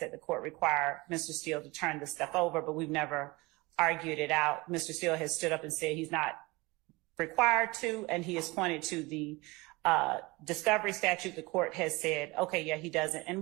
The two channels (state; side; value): quieter; left; 23.5 dB